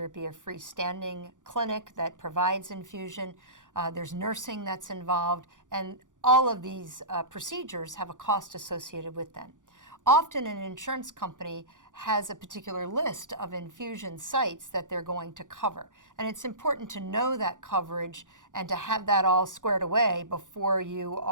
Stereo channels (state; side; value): late; left; 0.87 ms